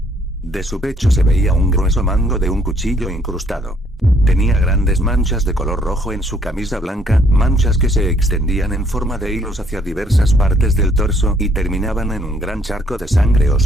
De su pecho se veía un grueso mango de un cuchillo incrustado. Tenía grandes manchas de color rojo en su camisa blanca, manchas que se extendían en forma de hilos hacia diversas partes del torso y terminaban en un gran charco de sangre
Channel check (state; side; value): normal; both; correlation 0.65